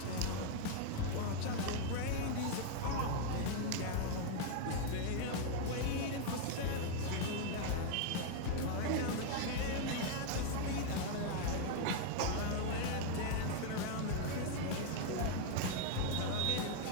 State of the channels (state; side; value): different; both; correlation 0.00